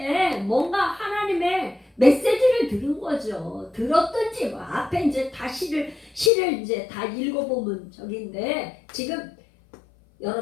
뭔가 하나님의 메시지를 들은 거죠. 들었든지 뭐 앞에 이제 다 시를 이제 다 읽어보면 저긴데 지금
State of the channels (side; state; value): right; drops out; at 6.3 s